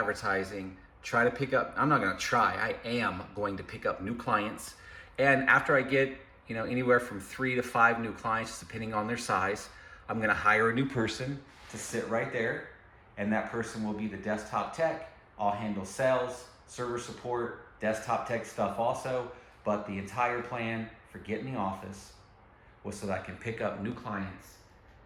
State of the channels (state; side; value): identical; both; correlation 1.00